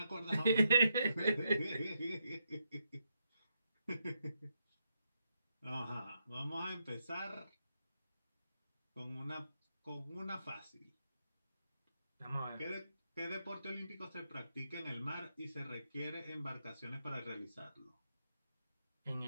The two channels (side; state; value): both; inverted; correlation -0.81